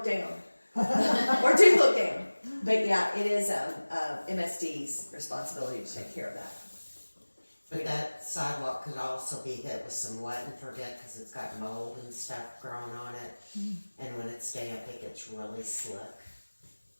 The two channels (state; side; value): inverted; both; correlation -1.00